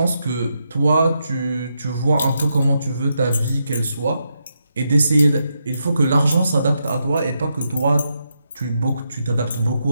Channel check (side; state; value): both; inverted; correlation -0.83